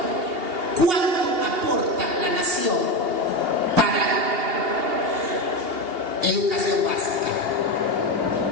¿cuánto aporta la nación para educación básica?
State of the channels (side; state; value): left; late; 2.8 ms